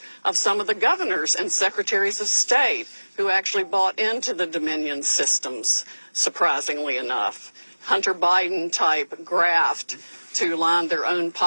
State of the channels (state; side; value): inverted; both; correlation -1.00